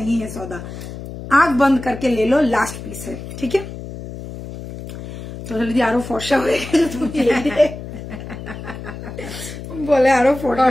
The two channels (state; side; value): noise; left; hum, 11 dB below the sound